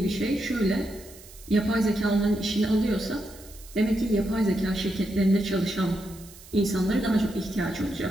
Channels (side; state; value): right; noise; hiss, 20 dB below the sound